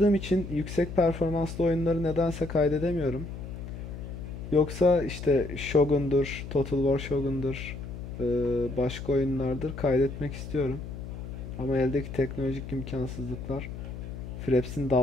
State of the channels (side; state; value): left; noise; hum, 9 dB below the sound